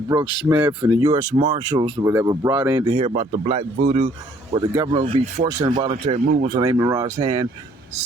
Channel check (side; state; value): both; normal; correlation 0.62